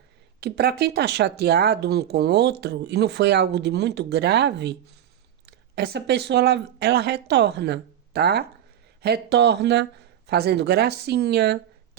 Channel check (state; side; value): quieter; left; 10.6 dB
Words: que, para quem tá chateado um com o outro e não foi algo de muito grave, essa pessoa ela retorna, tá? Retorna fazendo gracinha,